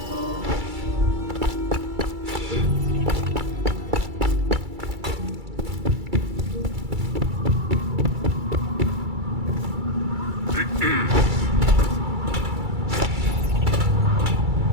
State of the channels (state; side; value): late; left; 2.3 ms